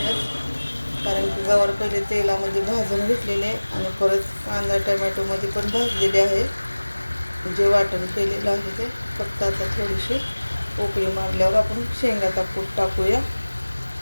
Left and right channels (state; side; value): inverted; both; correlation -1.00